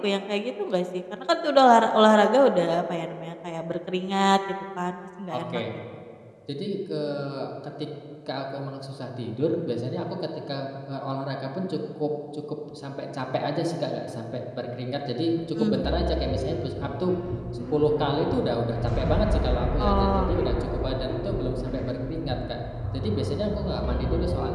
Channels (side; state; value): both; identical; correlation 1.00